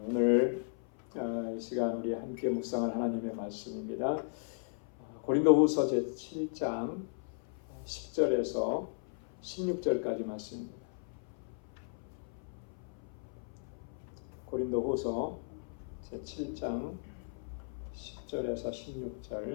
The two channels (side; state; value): right; silent; 54 dB below the other